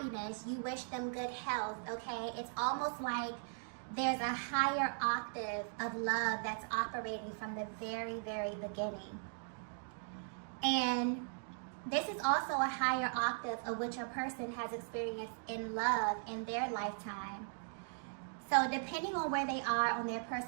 you wish them good health, okay? It's almost like there's a higher octave of love that's operating from the very, very beginning. And this is also a higher octave of what your person has experienced in love in their lifetime. So depending on where they are on their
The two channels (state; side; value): silent; left; digital silence